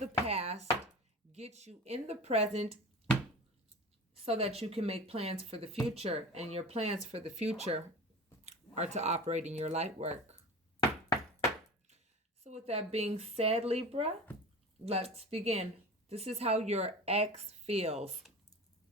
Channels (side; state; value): both; normal; correlation 0.34